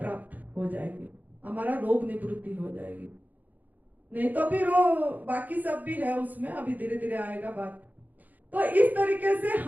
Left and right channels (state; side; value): late; left; 0.082 ms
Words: हो जाएंगे, हमारा रोग निवृत्ति हो जाएगी। नहीं तो फिर वो बाकी सब भी है उसमें, अभी धीरे धीरे आएगा बात। तो इस तरीके से